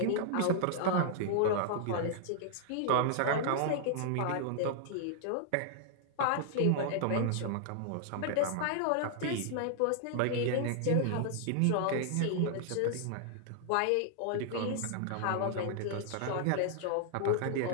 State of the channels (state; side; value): different; both; correlation -0.01